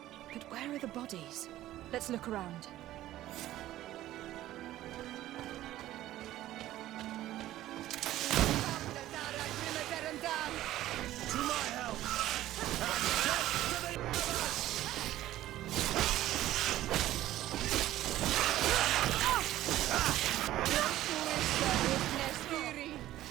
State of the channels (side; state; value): left; quieter; 14.4 dB